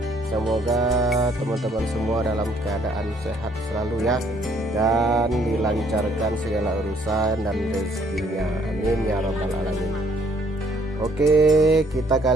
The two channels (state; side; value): normal; both; correlation 0.65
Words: Semoga teman-teman semua dalam keadaan sehat selalu ya, dan dilancarkan segala urusan dan rezekinya, amin ya rabbal alamin. Oke, kita